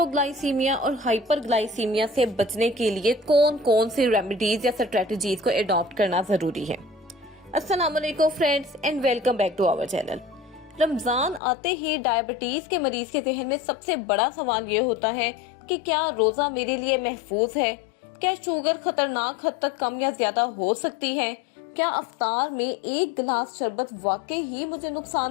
और हाइपरग्लाइसीमिया से बचने के लिए कौन कौन सी रेमेडीज या स्ट्रेटजीज को अडॉप्ट करना जरूरी है? अस्सलाम वालेकुम friends and welcome back to our channel. Ramzan आते ही डायबिटीज के मरीज के जहन में सबसे बड़ा सवाल ये होता है कि क्या रोजा मेरे लिए महफूज है? क्या शुगर खतरनाक हद तक कम या ज्यादा हो सकती है? क्या अफ्तार में एक गिलास शरबत वाकई ही मुझे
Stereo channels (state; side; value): drops out; right; at 11.4 s